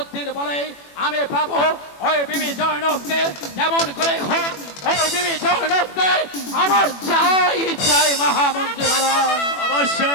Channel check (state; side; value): late; right; 21 ms